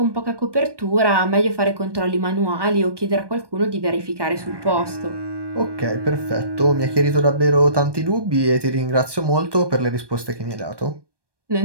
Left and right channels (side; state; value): left; late; 1.2 ms